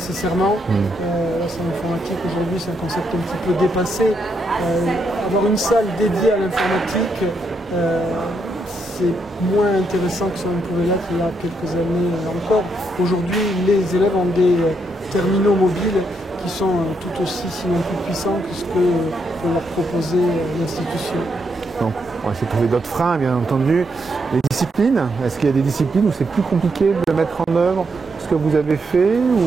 La salle informatique aujourd'hui c'est un concept un petit peu dépassé. Avoir une salle dédiée à l'informatique, c'est moins intéressant que ça ne pouvait l'être il y a quelques années encore. Aujourd'hui, les élèves ont des terminaux mobiles qui sont tout aussi, sinon plus puissants que ce que peut leur proposer l'institution. Donc, on va essayer de trouver d'autres freins, bien entendu. Les disciplines, est-ce qu'il y a des disciplines où c'est plus compliqué de mettre en œuvre ce que vous avez fait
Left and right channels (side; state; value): both; normal; correlation 0.79